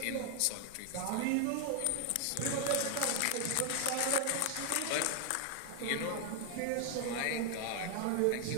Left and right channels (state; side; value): different; both; correlation 0.00